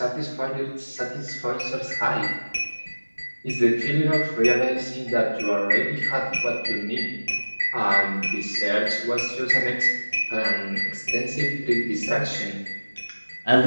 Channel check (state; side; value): inverted; both; correlation -1.00